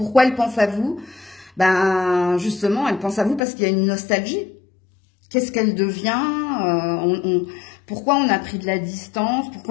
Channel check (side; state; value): right; drops out; at 3.4 s